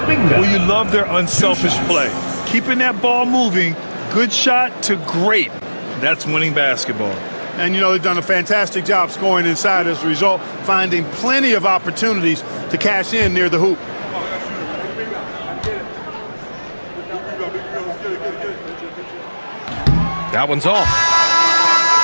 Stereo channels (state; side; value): inverted; both; correlation -1.00